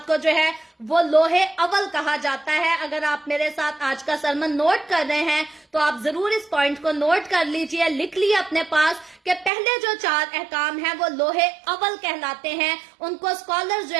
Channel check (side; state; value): left; drops out; at 9.5 s